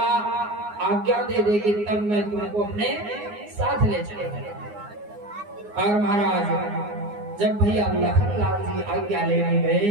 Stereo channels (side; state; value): left; late; 9.7 ms